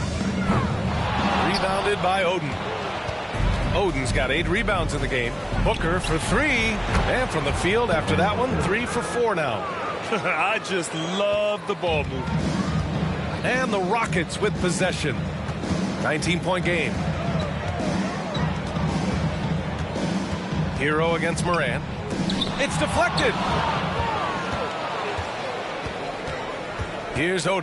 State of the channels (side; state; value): both; identical; correlation 1.00